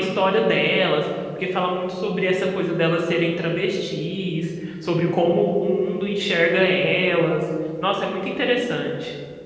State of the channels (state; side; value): identical; both; correlation 1.00